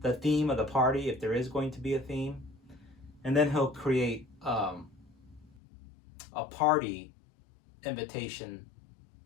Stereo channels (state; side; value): drops out; right; at 5.6 s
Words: the theme of the party, if there is going to be a theme, and then he'll create a party invitation